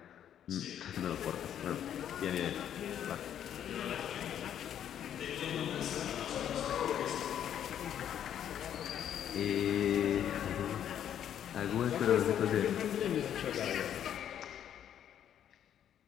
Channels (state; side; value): quieter; right; 9.9 dB